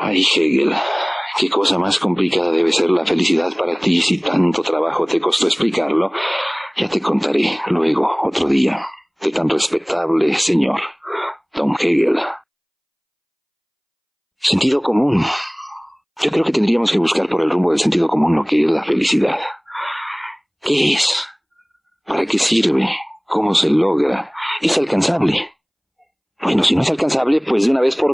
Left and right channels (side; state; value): both; identical; correlation 1.00